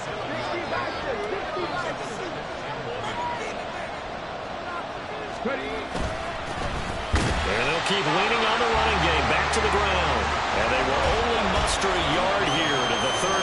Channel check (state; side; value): identical; both; correlation 1.00